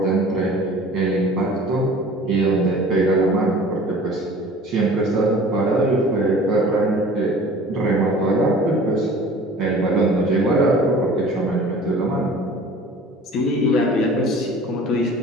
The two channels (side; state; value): both; normal; correlation 0.45